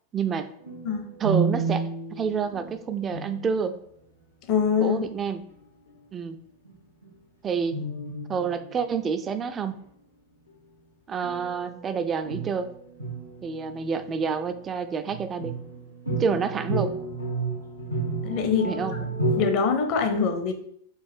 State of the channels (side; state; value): both; normal; correlation 0.17